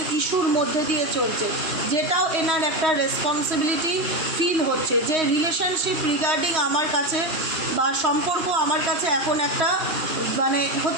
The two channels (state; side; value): late; left; 3.1 ms